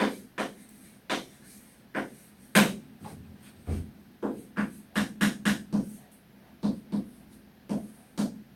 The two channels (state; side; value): identical; both; correlation 1.00